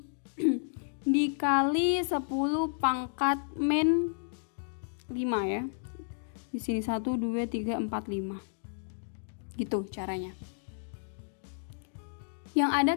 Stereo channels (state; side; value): silent; right; digital silence